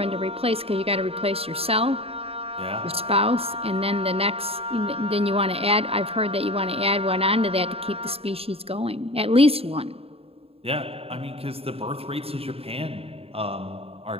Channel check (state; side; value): late; left; 0.28 ms